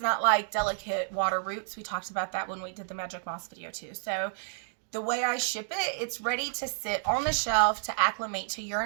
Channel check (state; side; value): silent; left; digital silence